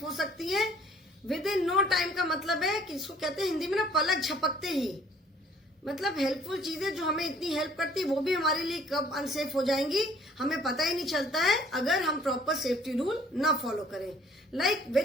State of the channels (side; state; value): both; normal; correlation 0.57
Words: हो सकती है। विद इन नो टाइम का मतलब है कि इसको कहते हैं हिंदी में ना, पलक झपकते ही। मतलब हेल्पफुल चीजें जो हमें इतनी हेल्प करती है वो भी हमारे लिए कब अनसेफ हो जाएंगी हमें पता ही नहीं चलता है, अगर हम प्रॉपर सेफ्टी रूल ना फॉलो करें। Like